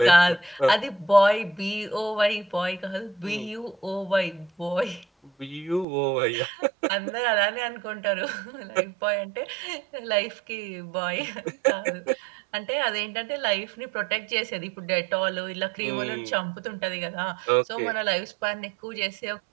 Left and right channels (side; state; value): left; drops out; at 5.9 s